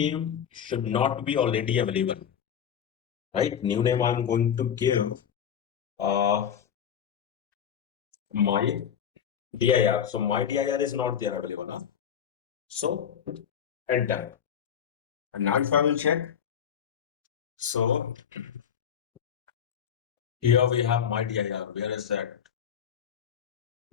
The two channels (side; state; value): right; quieter; 8.5 dB